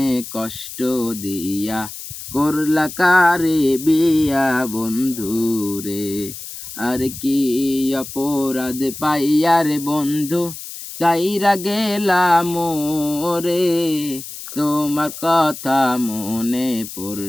কষ্ট দিয়া করলা কারে বিয়া বন্ধু রে। আর কি অপরাধ পাইয়া রে বন্ধু চাইরা গেলাম রে, তোমার কথা মনে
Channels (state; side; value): noise; left; hiss, 11 dB below the sound